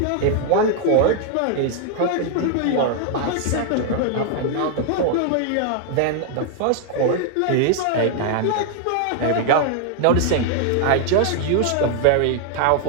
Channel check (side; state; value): both; different; correlation 0.00